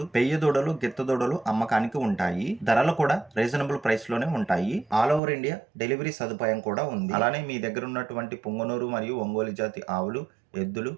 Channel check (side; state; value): left; drops out; at 5.2 s